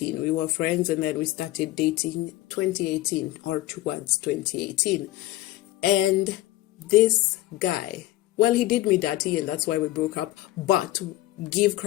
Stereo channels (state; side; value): quieter; right; 16.6 dB